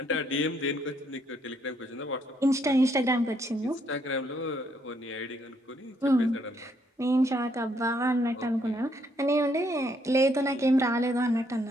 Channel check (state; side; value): normal; both; correlation 0.71